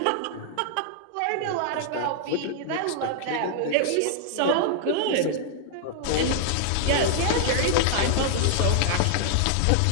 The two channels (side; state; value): both; different; correlation -0.01